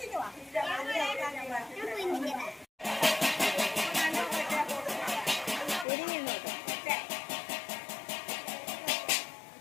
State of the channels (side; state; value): right; drops out; at 5.9 s